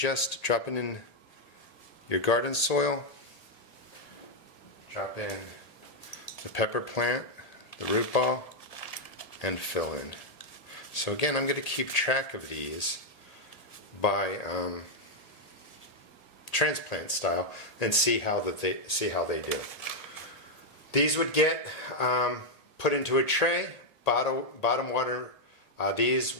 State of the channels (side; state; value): right; late; 1.8 ms